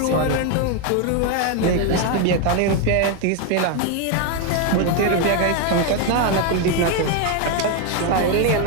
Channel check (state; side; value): different; both; correlation 0.01